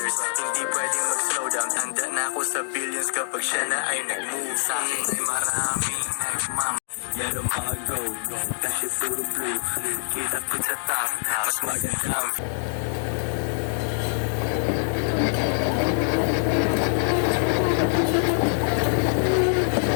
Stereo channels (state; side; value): silent; right; digital silence